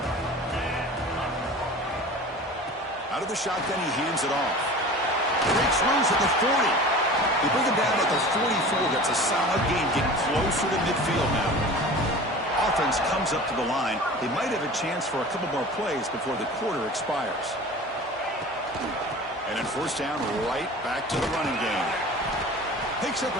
Out of the shotgun, he hands it off. Breaks loose at the 40. They bring him down at the 44. That's a solid gain, getting closer to midfield now. Offense comes up to the line. They might have a chance for a couple more plays before the quarter expires. And then first down, right back to the running game. Picks up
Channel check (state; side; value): normal; both; correlation 0.38